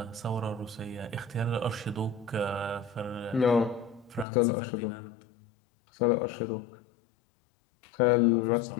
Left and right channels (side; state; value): right; drops out; at 4.2 s